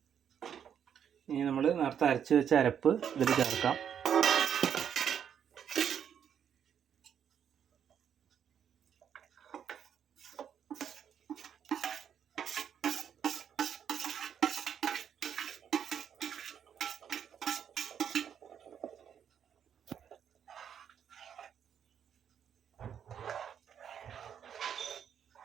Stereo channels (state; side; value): quieter; left; 8.5 dB